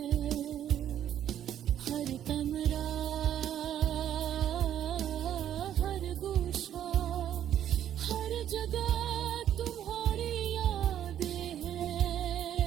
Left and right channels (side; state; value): left; quieter; 10.6 dB